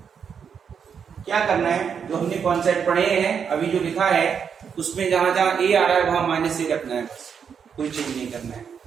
क्या करना है, जो हमने कॉन्सेप्ट पढ़े हैं अभी जो लिखा है उसमें जहां जहां a आ रहा है वहां -a रखना है, बस कोई चेंज नहीं करना है।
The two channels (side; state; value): left; quieter; 7.0 dB